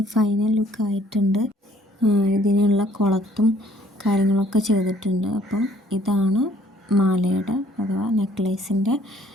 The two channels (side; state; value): both; normal; correlation 0.60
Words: ഫൈനൽ ലുക്ക് ആയിട്ടുണ്ട്. ഇതിനുള്ള കുളത്തും കാര്യങ്ങളൊക്കെ ചെയ്തിട്ടുണ്ട്. അപ്പോൾ ഇതാണ് മാലയുടെ അഥവാ നെക്ലേസിൻ്റെ